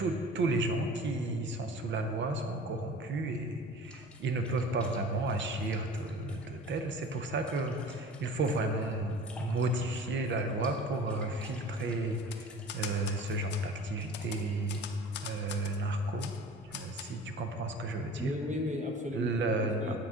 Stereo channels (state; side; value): normal; both; correlation 0.41